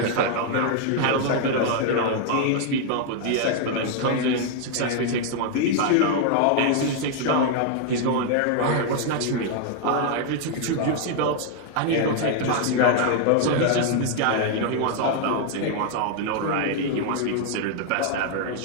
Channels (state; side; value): different; both; correlation 0.00